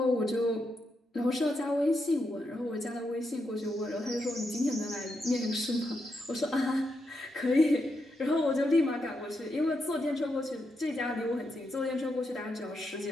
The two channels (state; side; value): normal; both; correlation 0.83